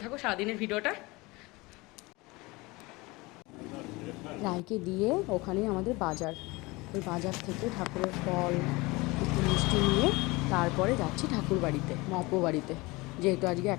থাকো সারাদিনের ভিডিওটা। রায়কে দিয়ে ওখানে আমাদের বাজার, ওই বাজার থেকে ঠাকুরের ফল একটু মিষ্টি নিয়ে তারপরে যাচ্ছি ঠাকুর বাড়িতে, মহাপ্রভু বাড়িতে। যেহেতু আজকে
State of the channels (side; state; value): right; quieter; 23.4 dB